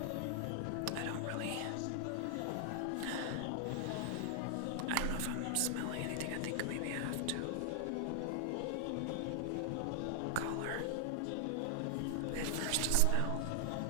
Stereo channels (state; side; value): different; both; correlation 0.00